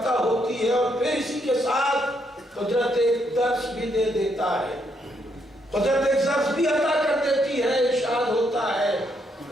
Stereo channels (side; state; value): both; normal; correlation 0.75